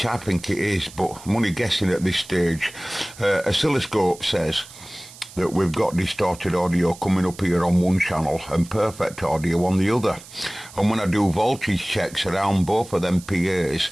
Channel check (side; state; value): right; noise; hiss, 19 dB below the sound